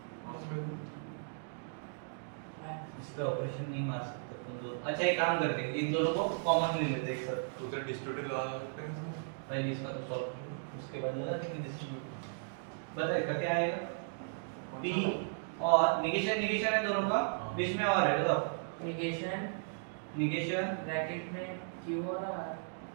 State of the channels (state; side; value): silent; left; digital silence